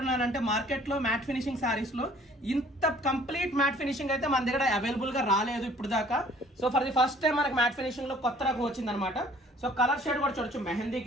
మార్కెట్లో మ్యాట్ ఫినిషింగ్ శారీస్లో ఇంత కంప్లీట్ మ్యాట్ ఫినిషింగ్ అయితే మన దగ్గర అవైలబుల్గా రాలేదు ఇప్పుడు దాకా. So for the first time మనకి మ్యాట్ ఫినిషింగ్లో కొత్త రకం వచ్చిందనమాట. సో కలర్ షేడ్ కూడా చూడొచ్చు, mehndi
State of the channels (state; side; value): normal; both; correlation 0.55